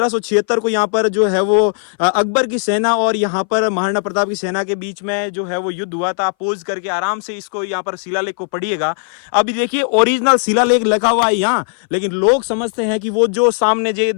को यहाँ पर जो है वो अकबर की सेना और यहाँ पर महाराणा प्रताप की सेना के बीच में जो है वो युद्ध हुआ था। पोज करके आराम से इसको यहाँ पर शिलालेख को पढ़िएगा। अभी देखिए ओरिजिनल शिलालेख लिखा हुआ है यहाँ, लेकिन लोग समझते हैं कि वो जो सामने जो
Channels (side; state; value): right; silent; 62 dB below the other